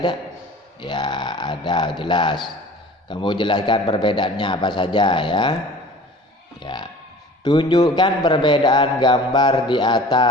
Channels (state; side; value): normal; both; correlation 0.44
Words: Ya, ada, jelas. Kamu jelaskan perbedaannya apa saja, ya. Ya. Tunjukkan perbedaan gambar di